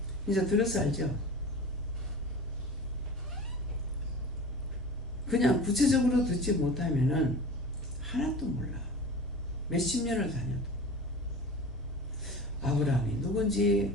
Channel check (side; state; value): both; normal; correlation 0.36